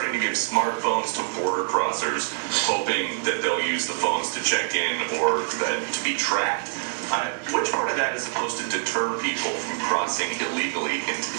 to give smartphones to border crossers, hoping that they'll use the phones to check in or to be tracked. Which part of that is supposed to deter people from crossing illegally into the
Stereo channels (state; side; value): silent; left; digital silence